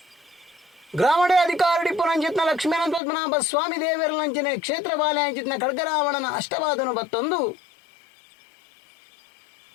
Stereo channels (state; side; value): drops out; right; at 3.0 s